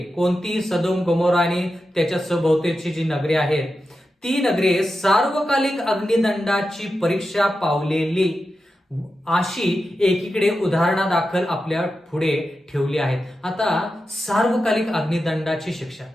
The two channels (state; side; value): normal; both; correlation 0.90